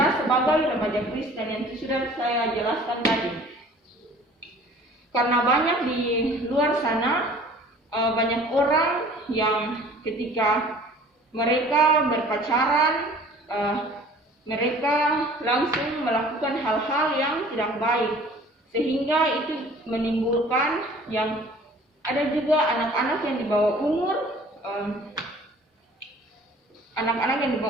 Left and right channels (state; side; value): normal; both; correlation 0.49